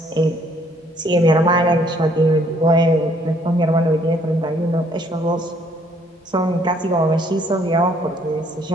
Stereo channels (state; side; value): normal; both; correlation 0.64